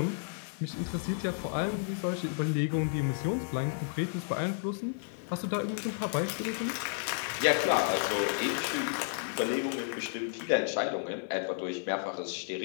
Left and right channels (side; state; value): right; silent; digital silence